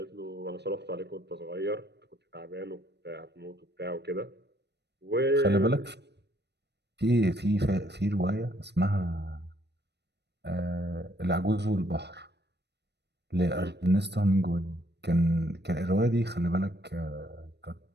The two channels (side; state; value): left; late; 0.49 ms